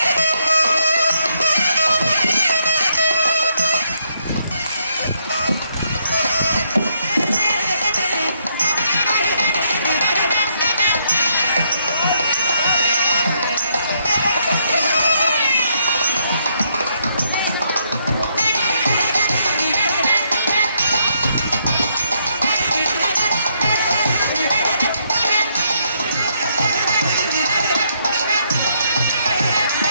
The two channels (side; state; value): both; inverted; correlation -0.74